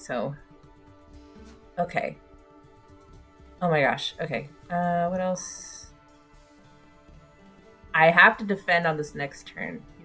so... Okay. Oh my gosh. Okay. What else? I have to defend on this next turn. You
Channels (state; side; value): identical; both; correlation 1.00